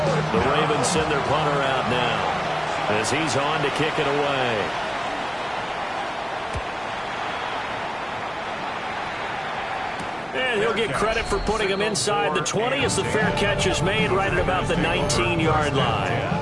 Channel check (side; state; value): both; identical; correlation 1.00